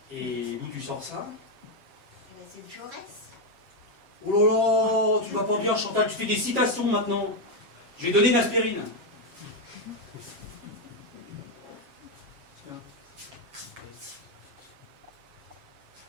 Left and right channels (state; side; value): late; left; 7.3 ms